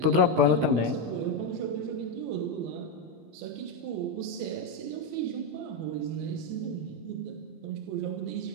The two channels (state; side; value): late; left; 15 ms